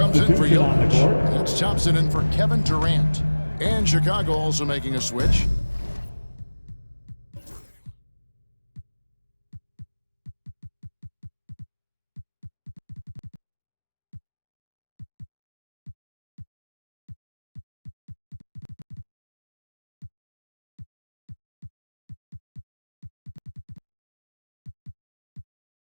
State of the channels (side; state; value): both; inverted; correlation -1.00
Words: in for Jokic. That's Thompson in for Kevin Durant. And Chicago also making a switch.